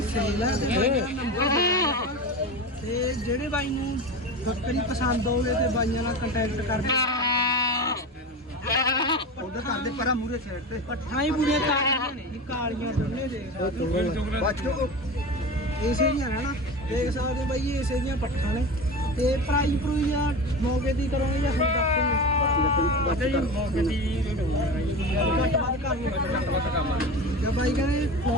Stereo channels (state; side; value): normal; both; correlation 0.27